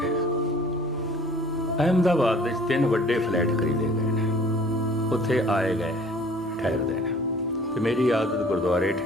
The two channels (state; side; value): normal; both; correlation 0.51